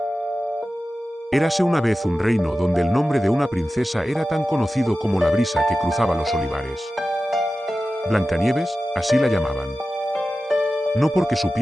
Érase una vez un reino donde el nombre de una princesa era tan conocido como la brisa que cruzaba los olivares. Blancanieves, así la llamaban. No porque su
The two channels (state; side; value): normal; both; correlation 0.94